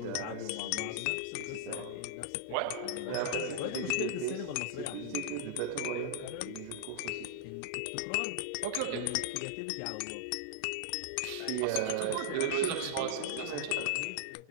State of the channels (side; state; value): both; different; correlation -0.01